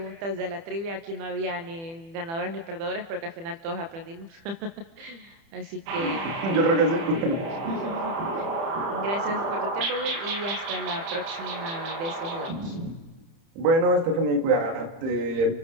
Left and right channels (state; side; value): late; left; 30 ms